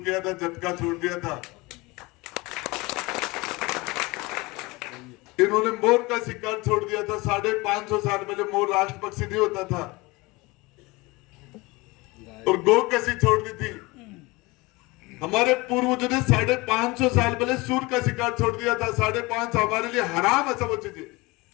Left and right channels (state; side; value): quieter; right; 23.5 dB